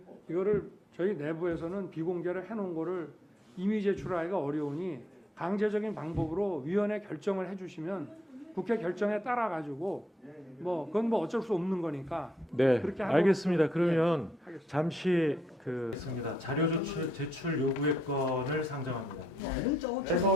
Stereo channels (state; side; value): normal; both; correlation 0.75